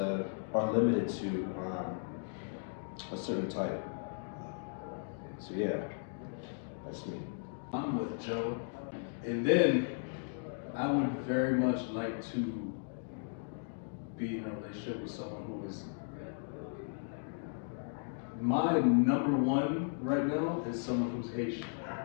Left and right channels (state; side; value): silent; right; digital silence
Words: or limited to a certain type. So yeah, that's me. I'm with Joe. And then I would very much like to be in a relationship with someone who is my number one right now is someone who's Haitian.